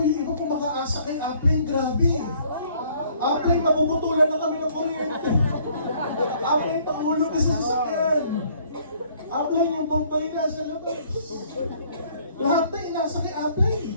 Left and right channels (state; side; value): inverted; both; correlation -0.60